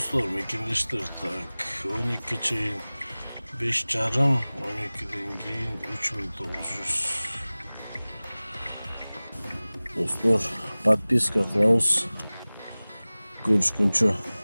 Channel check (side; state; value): both; inverted; correlation -0.99